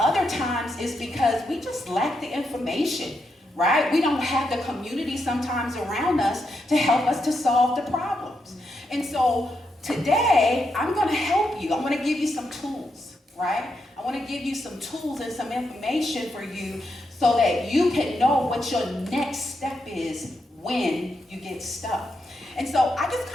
times it's because we just lack the information, right? We don't have the community sometimes around us to help us to solve the problems. And so today, I'm going to help you. I'm going to give you some tools, right? I want to give you some tools and some information for you so that you can know what your next step is when you get stuck. And so I just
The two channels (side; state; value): both; normal; correlation 0.83